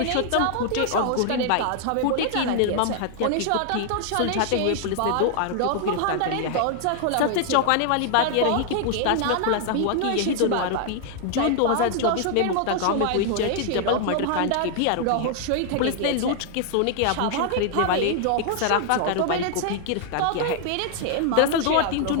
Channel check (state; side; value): different; both; correlation 0.00